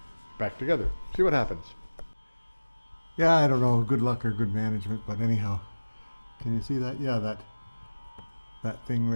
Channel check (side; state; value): both; inverted; correlation -1.00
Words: back together. See what happens. Yeah, I don't know, good luck or good management, but anyhow, can you see that? Yeah, that thing